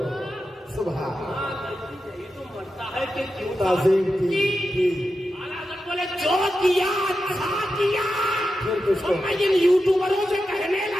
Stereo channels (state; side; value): normal; both; correlation 0.90